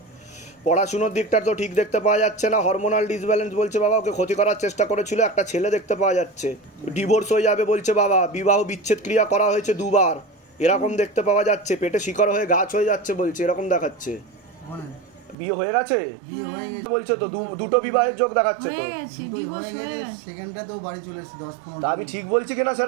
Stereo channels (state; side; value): drops out; left; at 15.4 s